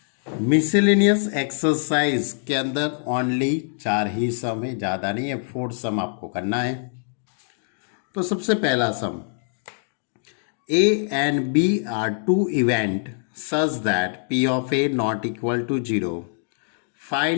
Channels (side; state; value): right; silent; digital silence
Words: मिसलेनियस एक्सरसाइज के अंदर ओनली 4 ही सम है, ज़्यादा नहीं है। 4 सम आपको करना है। तो सबसे पहला सम, A and B are two event such that P of A not equal to 0.